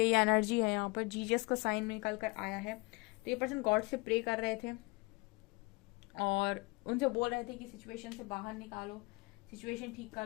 ये एनर्जी है यहाँ पर, जीजस का साइन में निकल कर आया है। तो ये पर्सन गॉड से प्रे कर रहे थे और उनसे बोल रहे थे कि सिचुएशन से बाहर निकालो, सिचुएशन ठीक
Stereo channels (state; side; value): quieter; right; 26.5 dB